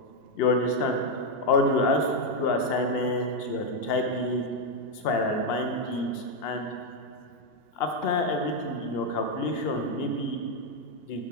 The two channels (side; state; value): right; late; 2.8 ms